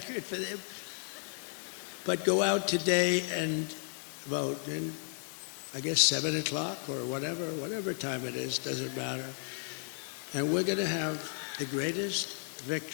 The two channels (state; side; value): silent; right; 55 dB below the other